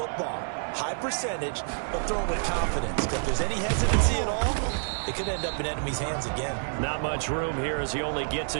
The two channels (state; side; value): silent; left; digital silence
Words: high percentage, but throw it with confidence. If there's any hesitancy at all, it could end up in enemy's hands again. Not much room here as he only gets